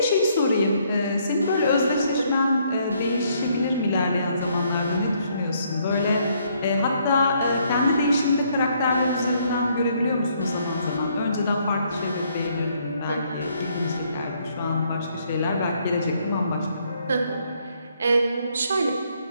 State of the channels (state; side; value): inverted; both; correlation -0.69